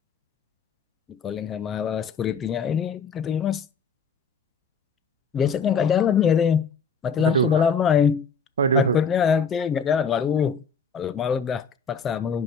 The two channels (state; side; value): quieter; right; 5.1 dB